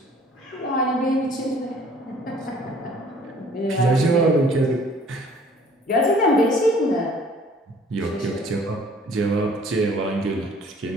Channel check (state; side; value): normal; both; correlation 0.54